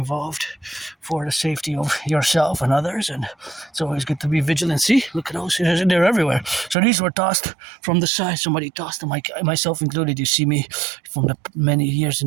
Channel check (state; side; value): drops out; left; at 6.8 s